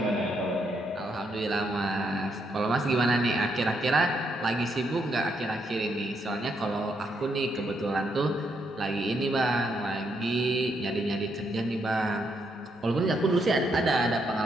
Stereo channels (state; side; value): normal; both; correlation 0.77